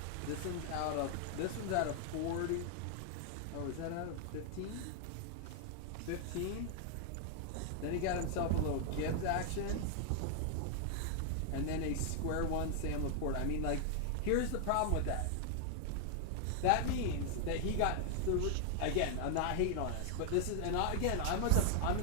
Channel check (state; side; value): different; both; correlation 0.00